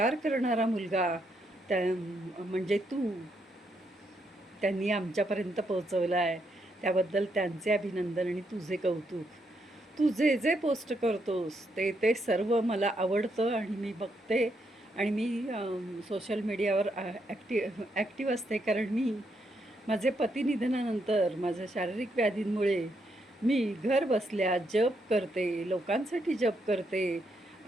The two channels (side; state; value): both; normal; correlation 0.78